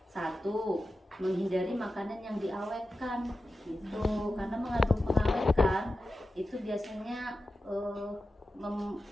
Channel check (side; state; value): both; normal; correlation 0.93